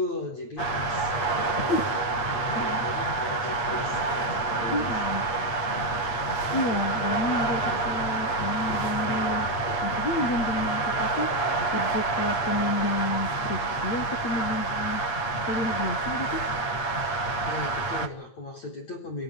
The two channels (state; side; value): late; right; 9.1 ms